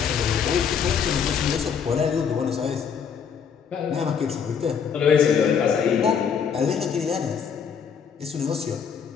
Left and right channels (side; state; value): right; quieter; 7.0 dB